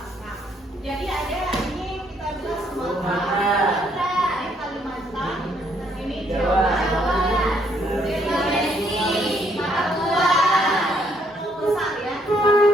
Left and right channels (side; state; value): both; normal; correlation 0.69